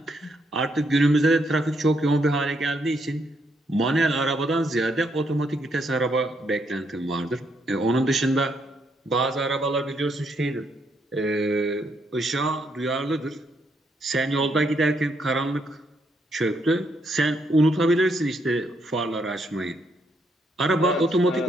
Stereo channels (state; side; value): normal; both; correlation 0.75